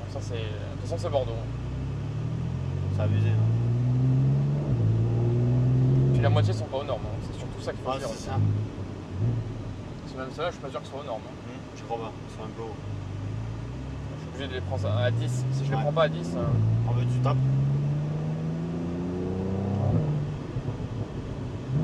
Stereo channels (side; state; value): both; identical; correlation 1.00